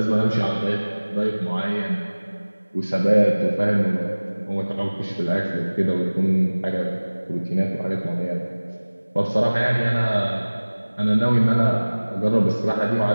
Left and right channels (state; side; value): inverted; both; correlation -1.00